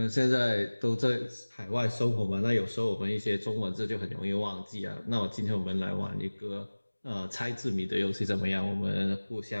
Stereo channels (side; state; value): both; inverted; correlation -1.00